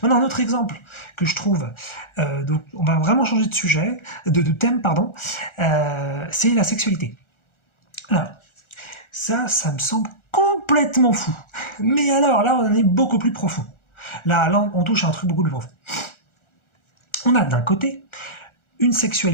Maintenant, un autre exemple que je trouve, donc on va vraiment changer de sujet, de thème, pardon, c'est la sexualité. Alors, ça me semble complètement fou. Mais alors, là, on en est beaucoup plus profond. Là, on touche à un truc beaucoup plus profond. On a d'un côté une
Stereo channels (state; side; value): late; right; 1.4 ms